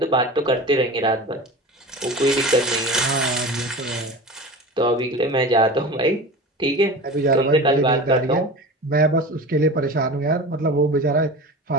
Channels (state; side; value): normal; both; correlation 0.33